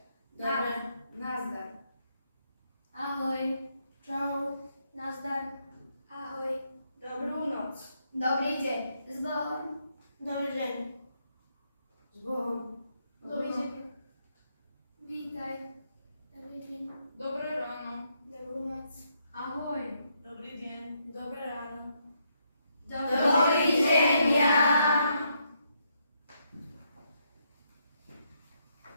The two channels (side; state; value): both; inverted; correlation -0.76